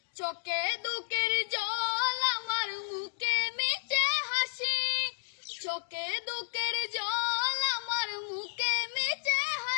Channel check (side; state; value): right; silent; digital silence